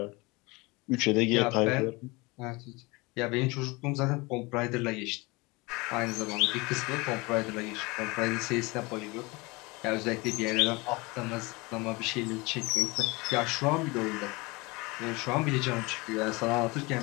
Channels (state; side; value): quieter; right; 24.8 dB